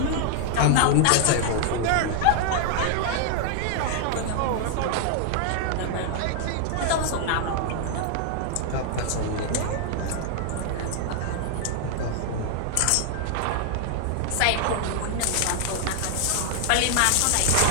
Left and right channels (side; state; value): both; different; correlation 0.00